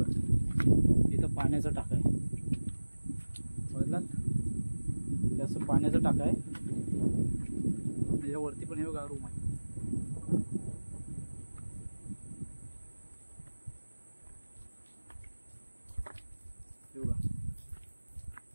इथं पाण्याचा टाका आहे. बघलात हे असं पाण्याचा टाका आहे. त्याच्यावरती पण हे बघा रूम आहे. हे बघा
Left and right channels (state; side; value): inverted; both; correlation -1.00